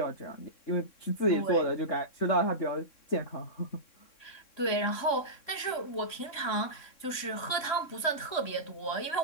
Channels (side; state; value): right; late; 3.6 ms